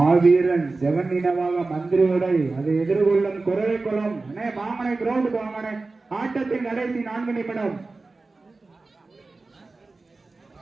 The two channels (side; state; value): left; quieter; 3.6 dB